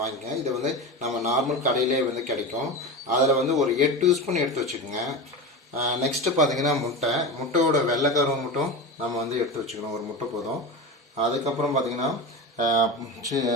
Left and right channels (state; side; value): normal; both; correlation 0.24